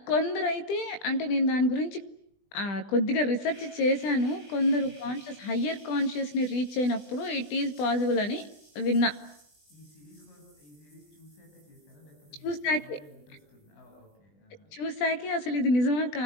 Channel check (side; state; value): right; late; 20 ms